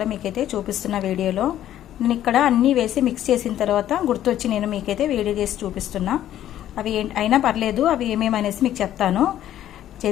మీకైతే చూపిస్తున్న వీడియోలో నేను ఇక్కడ అన్నీ వేసి మిక్స్ చేసిన తర్వాత గుర్తొచ్చి నేను మీకైతే వీడియో చేసి చూపిస్తున్నా. అవి అయినా పర్లేదు, అవి ఏమేమనేసి మీకు చెప్తాను.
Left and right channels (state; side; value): quieter; right; 12.0 dB